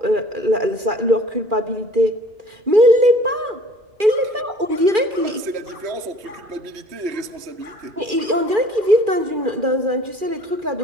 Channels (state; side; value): late; left; 2.4 ms